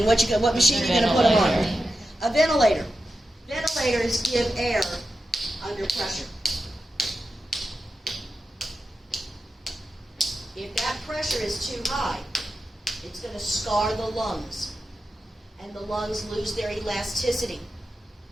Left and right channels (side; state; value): both; normal; correlation 0.90